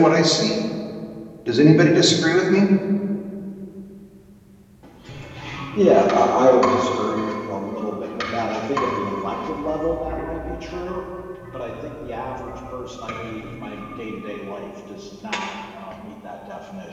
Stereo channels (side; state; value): both; identical; correlation 1.00